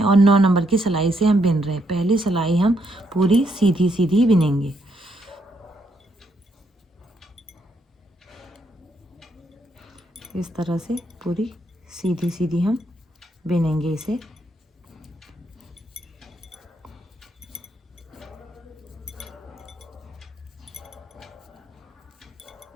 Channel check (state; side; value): normal; both; correlation 0.76